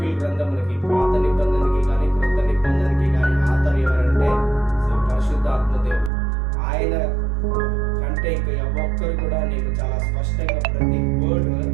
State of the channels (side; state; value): left; drops out; at 6.1 s